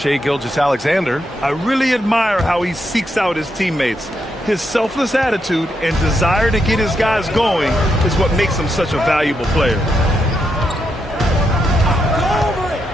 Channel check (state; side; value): normal; both; correlation 0.81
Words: Gilgeous-Alexander. I really admire how he seeks out his teammates. His selfless attitude and desire to get his guys going is what makes him such a valuable player.